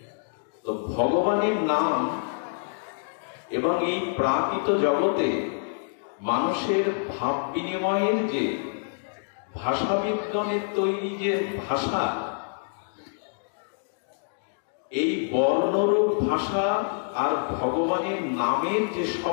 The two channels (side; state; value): right; silent; digital silence